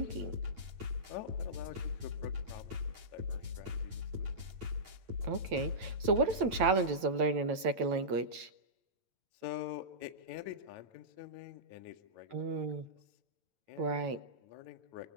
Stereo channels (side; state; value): left; late; 9.0 ms